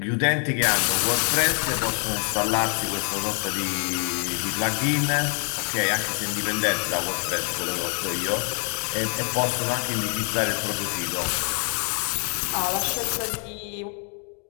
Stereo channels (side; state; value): right; quieter; 39.8 dB